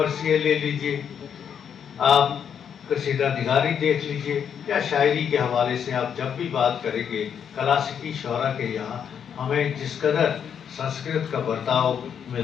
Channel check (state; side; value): quieter; right; 8.0 dB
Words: لے لیجئے، آپ قصیدہ نگاری دیکھ لیجئے، یا شاعری کے حوالے سے آپ جب بھی بات کریں گے کلاسیکی شعراء کے یہاں ہمیں جس قدر سنسکرت کا برتاؤ